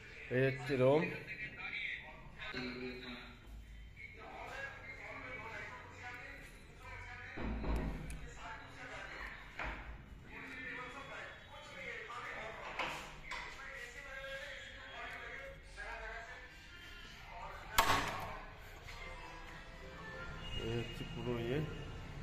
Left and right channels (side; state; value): both; identical; correlation 1.00